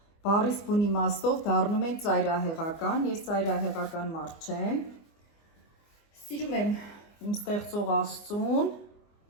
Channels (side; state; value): right; late; 24 ms